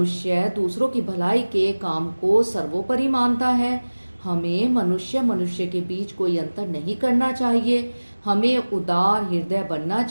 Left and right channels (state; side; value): inverted; both; correlation -1.00